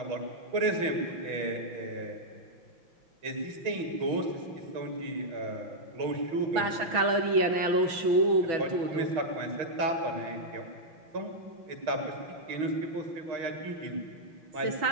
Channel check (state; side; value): late; left; 6.1 ms